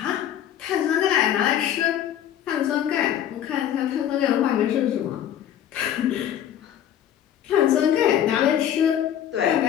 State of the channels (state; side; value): quieter; right; 10.5 dB